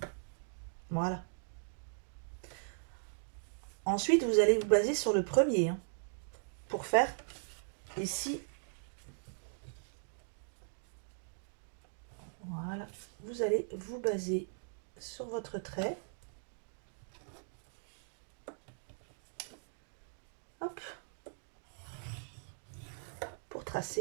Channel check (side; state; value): left; silent; digital silence